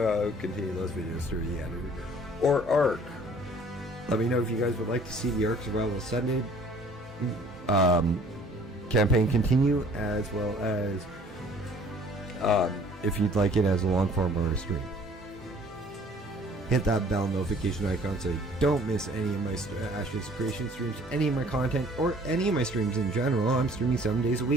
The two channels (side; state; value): both; normal; correlation 0.54